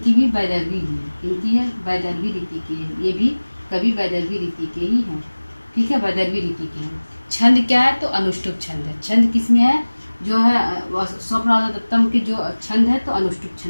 भी वैदर्भी ही है। इनकी है वैदर्भी रीति की है। ये भी कवि वैदर्भी रीति के ही हैं। ठीक है, वैदर्भी रीति के हैं। छंद क्या है? तो अनुष्टुप छंद है। छंद किसमें है? जो है स्वप्नवासोत्तम के जो छंद है तो अनुष्टुप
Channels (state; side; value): inverted; both; correlation -1.00